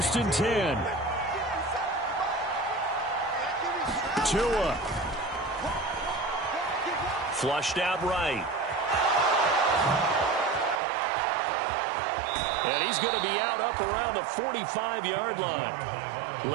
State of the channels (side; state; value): left; drops out; at 10.8 s